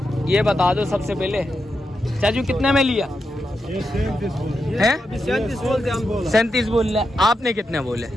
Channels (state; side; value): normal; both; correlation 0.87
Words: ये बता दो सबसे पहले। चाचू कितने में लिया है? 37 बोल रहे। आपने कितने बोले?